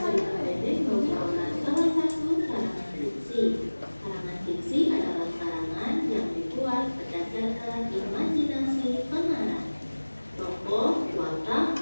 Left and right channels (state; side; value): inverted; both; correlation -1.00